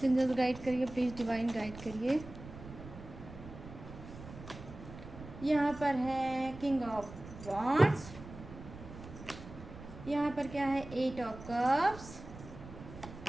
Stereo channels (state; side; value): noise; right; rumble, 14 dB below the sound